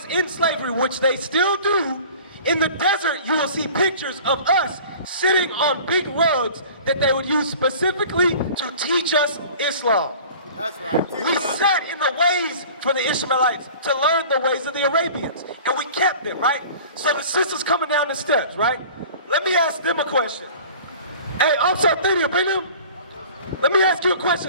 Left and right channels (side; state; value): both; inverted; correlation -0.43